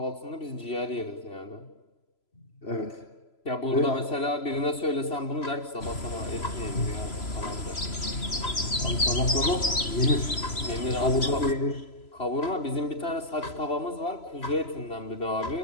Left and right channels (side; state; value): right; late; 3.0 ms